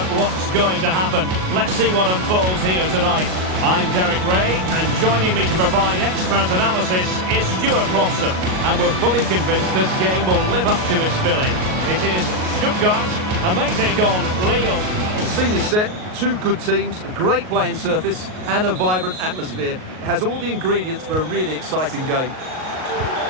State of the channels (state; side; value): late; left; 38 ms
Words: what's going to happen. Let's see what unfolds here tonight. I'm Derek Ray, and joining me to provide expert analysis is Stuart Robson. And we're fully convinced this game will live up to its billing. It is Stuttgart, and they take on Lille. The scene is set, 2 good teams, a great playing surface and a vibrant atmosphere. It has all the ingredients for a really exciting game.